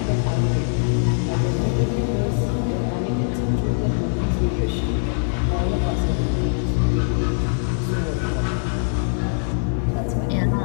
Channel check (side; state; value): right; silent; digital silence